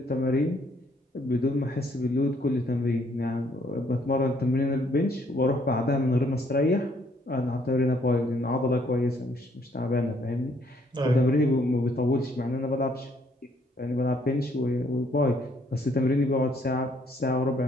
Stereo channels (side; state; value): both; normal; correlation 0.66